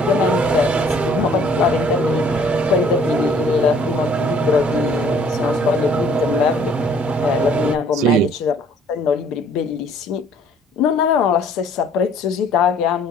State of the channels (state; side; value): normal; both; correlation 0.58